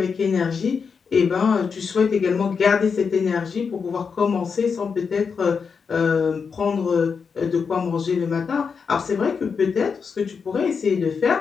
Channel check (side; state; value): right; quieter; 5.8 dB